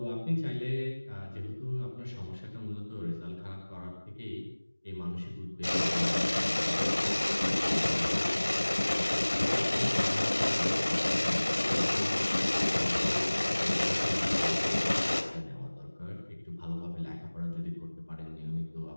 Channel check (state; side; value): inverted; both; correlation -1.00